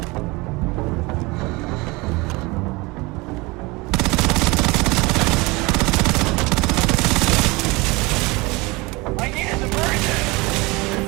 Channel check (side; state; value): left; quieter; 24.2 dB